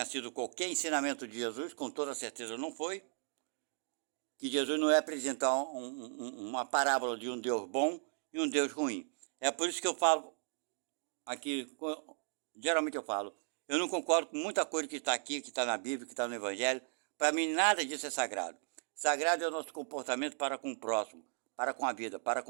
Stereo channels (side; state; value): left; silent; 54 dB below the other